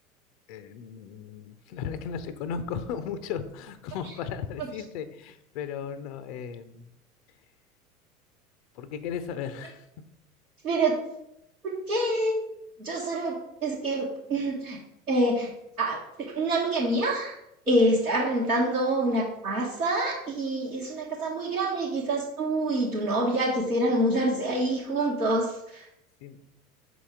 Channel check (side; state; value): both; normal; correlation 0.33